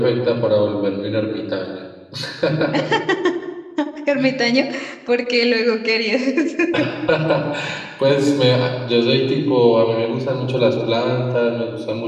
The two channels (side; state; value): both; identical; correlation 1.00